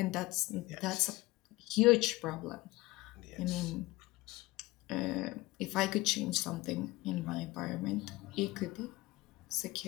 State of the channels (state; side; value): quieter; right; 20.0 dB